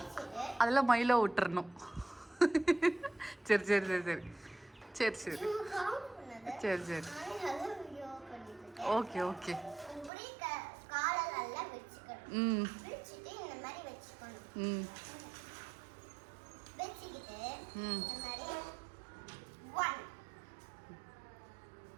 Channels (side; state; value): left; drops out; at 10.1 s